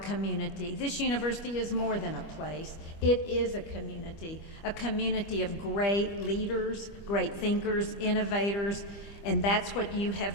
This university is more than a place. It is a community of great leaders, great thinkers, innovators, and that's what you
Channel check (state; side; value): late; right; 25 ms